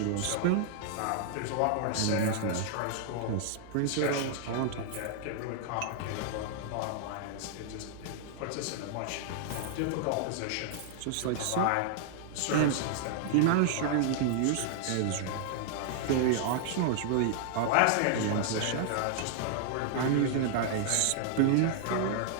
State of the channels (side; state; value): both; different; correlation -0.01